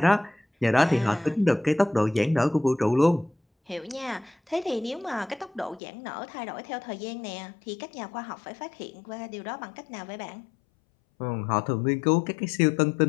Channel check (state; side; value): drops out; right; at 5.8 s